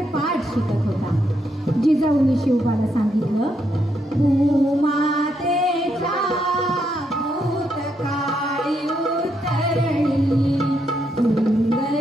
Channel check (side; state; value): both; normal; correlation 0.78